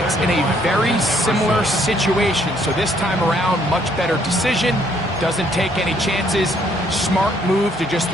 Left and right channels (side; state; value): both; normal; correlation 0.67